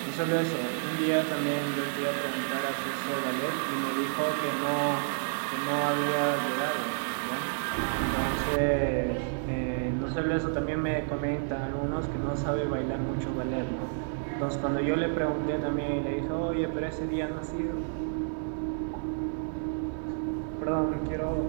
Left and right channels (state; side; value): silent; left; 58 dB below the other